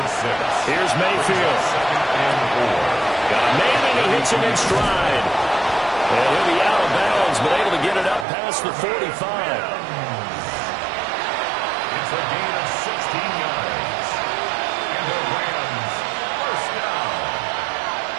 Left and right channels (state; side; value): drops out; left; at 8.2 s